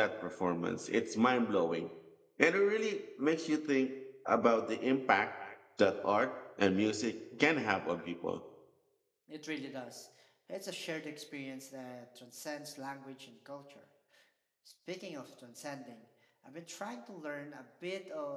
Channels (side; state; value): both; identical; correlation 1.00